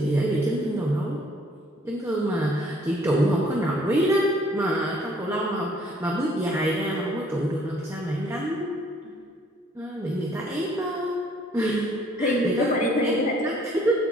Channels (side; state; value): both; normal; correlation 0.61